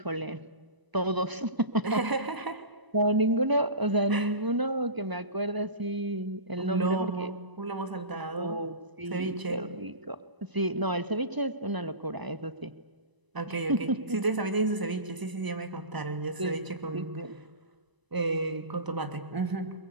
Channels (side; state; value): left; late; 1.0 ms